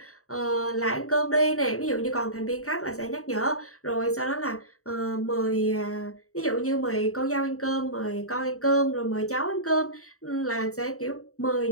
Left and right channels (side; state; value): right; late; 0.64 ms